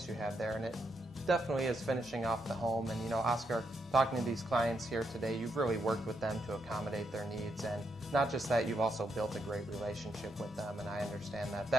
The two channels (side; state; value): both; normal; correlation 0.80